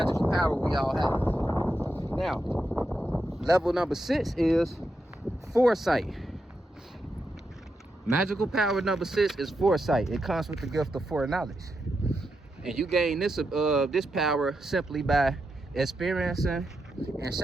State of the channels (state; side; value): normal; both; correlation 0.85